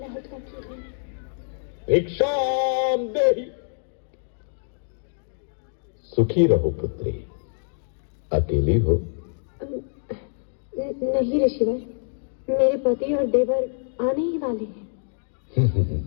का किरण? भिक्षाम देहि। सुखी रहो पुत्री। अकेली हो? नहीं ऋषिवर, मेरे पति और देवर आने ही वाले हैं।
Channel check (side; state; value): right; silent; digital silence